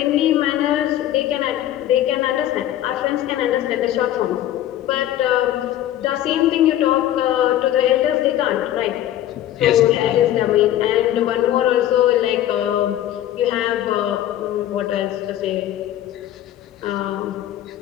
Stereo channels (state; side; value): quieter; right; 12.5 dB